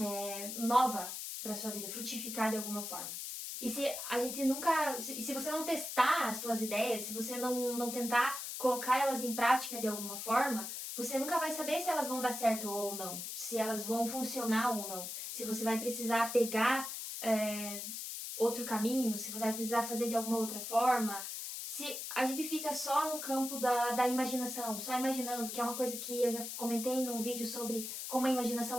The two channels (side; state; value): left; noise; hiss, 6 dB below the sound